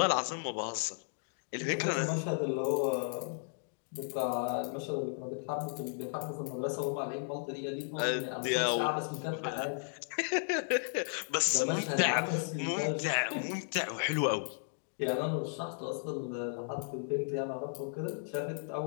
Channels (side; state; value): right; silent; digital silence